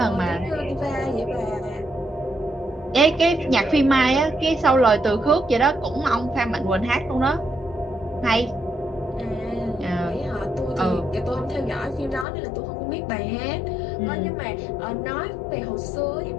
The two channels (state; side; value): drops out; right; at 12.2 s